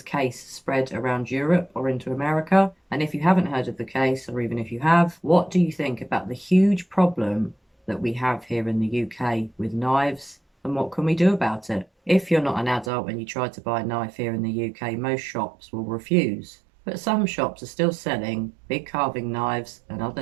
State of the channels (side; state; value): left; drops out; at 12.9 s